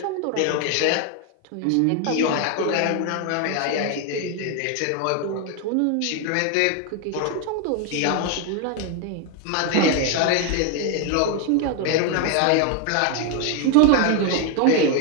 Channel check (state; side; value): different; both; correlation 0.01